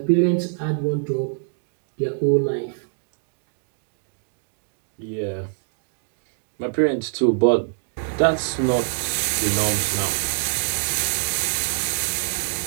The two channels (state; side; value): silent; left; 62 dB below the other